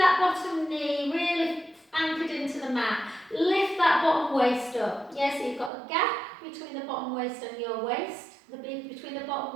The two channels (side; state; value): left; drops out; at 5.7 s